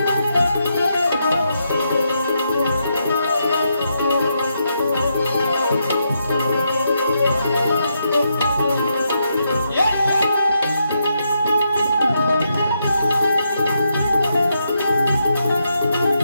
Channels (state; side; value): inverted; both; correlation -0.81